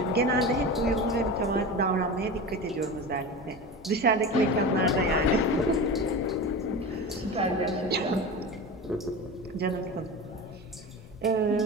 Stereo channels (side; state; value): both; normal; correlation 0.28